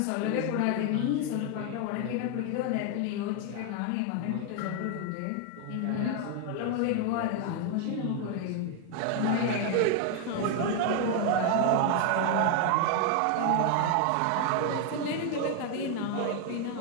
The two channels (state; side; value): different; both; correlation 0.01